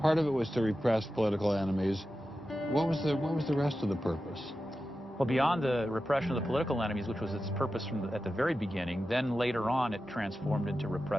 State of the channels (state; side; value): normal; both; correlation 0.92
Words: part of it was to repress political enemies. What was the rest of the purpose? Well, beyond the repression of the political enemies, which was its purpose at the very beginning, then later on it transformed into